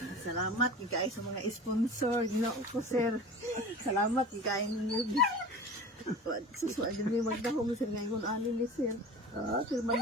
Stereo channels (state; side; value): normal; both; correlation 0.36